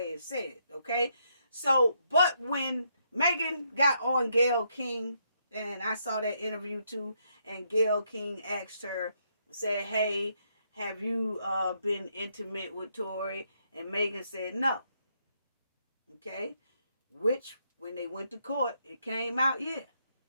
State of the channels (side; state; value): both; inverted; correlation -0.76